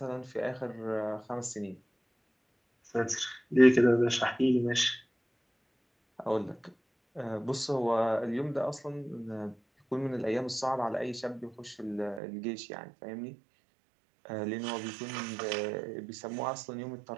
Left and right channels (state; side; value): drops out; left; at 12.2 s